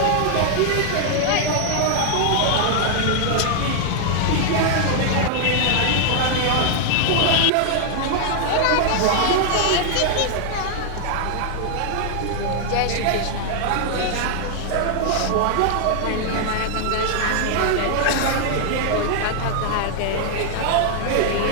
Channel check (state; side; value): different; both; correlation 0.00